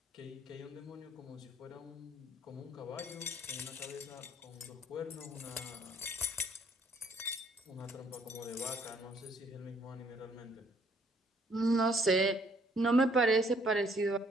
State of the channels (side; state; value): both; normal; correlation 0.64